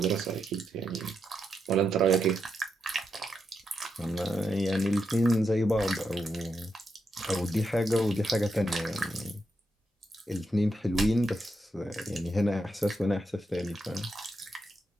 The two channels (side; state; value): both; normal; correlation 0.83